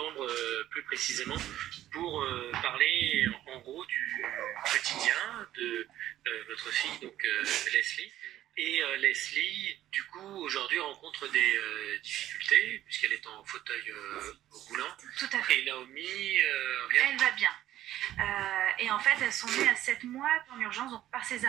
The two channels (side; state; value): left; quieter; 13.2 dB